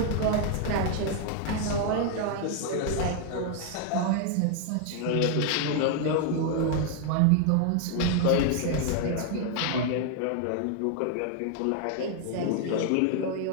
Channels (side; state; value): both; different; correlation 0.00